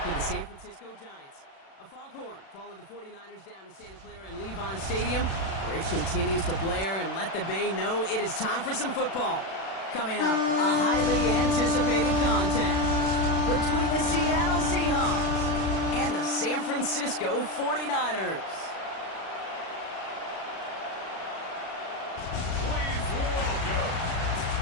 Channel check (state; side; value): late; right; 36 ms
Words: with the San Francisco Giants. A foghorn followed the 49ers down to Santa Clara and Levon Stadium, where it continues to blare and let the Bay know it is time for some football. Coming up, a highly anticipated contest between the Seattle Seahawks and the San Francisco 49ers. Please welcome